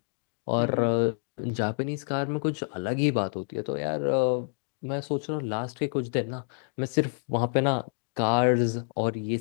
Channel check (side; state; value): right; silent; digital silence